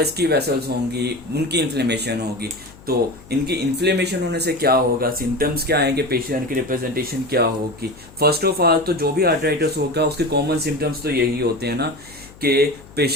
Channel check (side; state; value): left; noise; hum, 22 dB below the sound